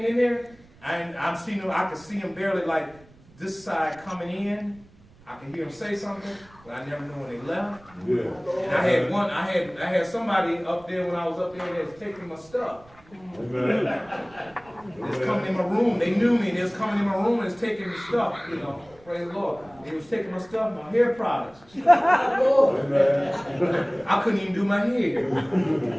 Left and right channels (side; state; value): right; noise; rumble, 26 dB below the sound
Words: in there, I could see them barely like this side coming in. I could hear them say something, but I never knew when they left. Yeah. And I had somebody up there when I was up there that was taking my stuff. Amen. They was coming in my room. They knew me. They was coming in my room and was taking the stuff, Praise the Lord. They was taking my stuff, my hair products. I couldn't even do my hair.